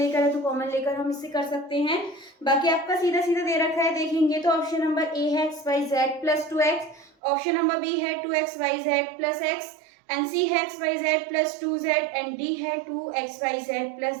है तो कॉमन लेकर हम इससे कर सकते हैं, बाकी आपका सीधा सीधा दे रखा है। देखेंगे तो ऑप्शन नंबर ए है xyz plus 2x, option number B है 2xyz प्लस x एंड सी है xyz plus 2z and D है 2xyz प्लस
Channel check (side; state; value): left; drops out; at 7.1 s